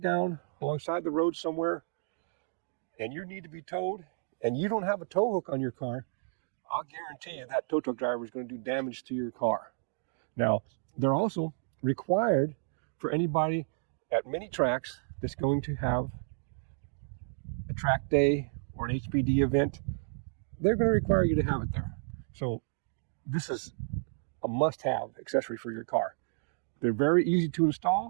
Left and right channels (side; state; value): left; silent; digital silence